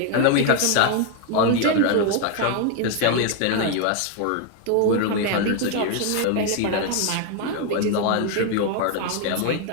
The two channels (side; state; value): both; different; correlation 0.01